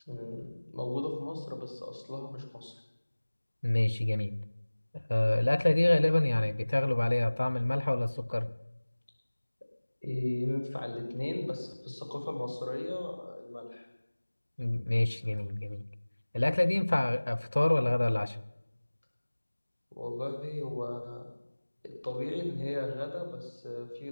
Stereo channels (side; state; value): both; inverted; correlation -1.00